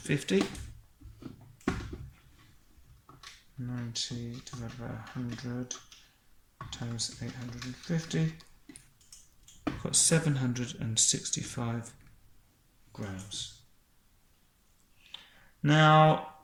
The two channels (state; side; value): identical; both; correlation 1.00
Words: 90 divided by 100 times 850. We've got 765 grams. Now,